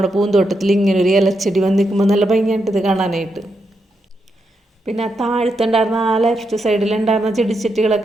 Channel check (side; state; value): both; normal; correlation 0.83